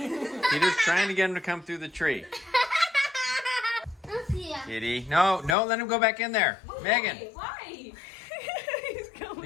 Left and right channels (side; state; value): right; drops out; at 5.6 s